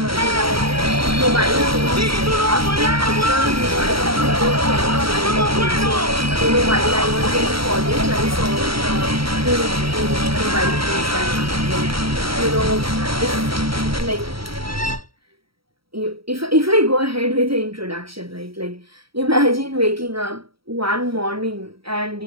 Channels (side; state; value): left; late; 0.75 ms